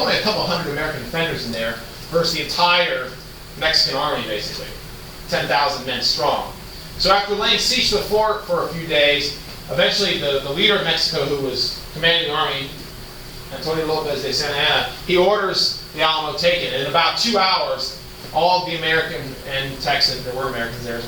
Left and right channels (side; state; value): both; identical; correlation 1.00